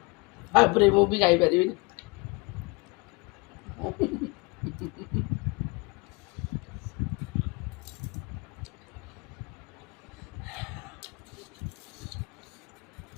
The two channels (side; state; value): right; quieter; 27.9 dB